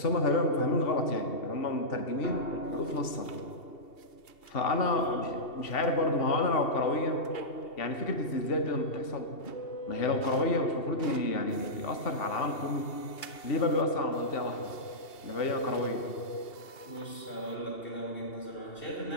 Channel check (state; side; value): late; right; 2.8 ms